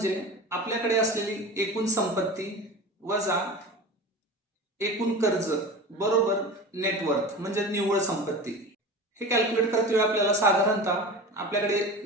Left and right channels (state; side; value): normal; both; correlation 0.32